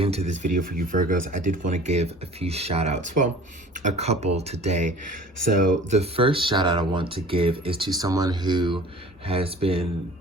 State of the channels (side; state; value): both; normal; correlation 0.45